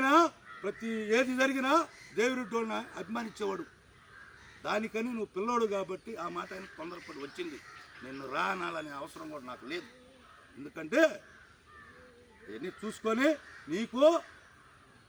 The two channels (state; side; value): identical; both; correlation 1.00